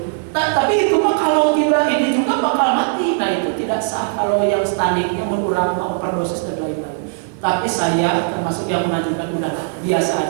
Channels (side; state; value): left; silent; 58 dB below the other